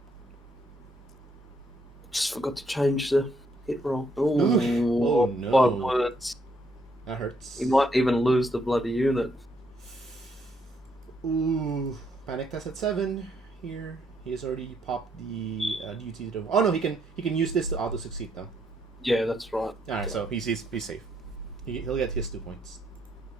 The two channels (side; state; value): both; normal; correlation 0.72